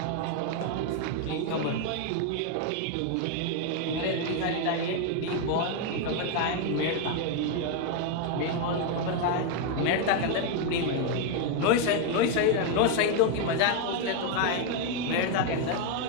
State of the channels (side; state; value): both; different; correlation 0.01